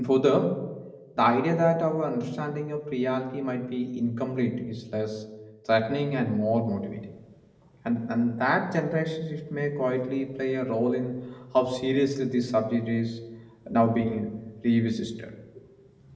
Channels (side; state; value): both; identical; correlation 1.00